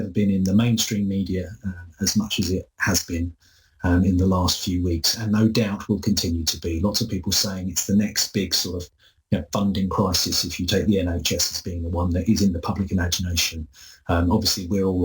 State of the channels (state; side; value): identical; both; correlation 1.00